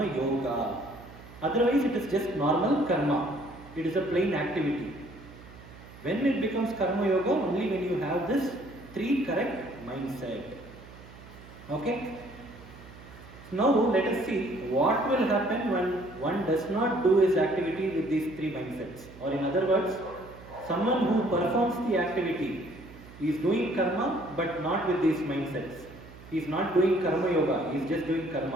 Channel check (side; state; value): right; noise; hum, 19 dB below the sound